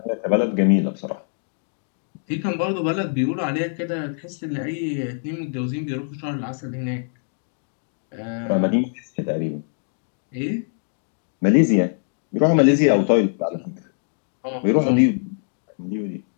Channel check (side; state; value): right; silent; 62 dB below the other